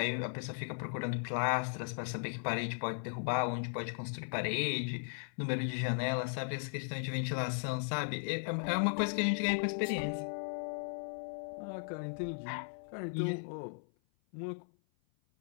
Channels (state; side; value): silent; right; 53 dB below the other